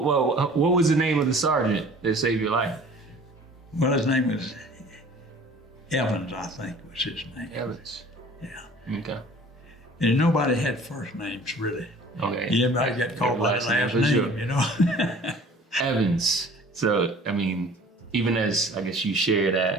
what was the name of the sergeant that saved your life? well, his name was Evans, I think was his name. Evans. Yeah, Okay. and nobody had first names really. Okay. Everybody got called by the last for name, sure. you know. Evans. So, I mean, even as I guess you share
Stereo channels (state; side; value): normal; both; correlation 0.48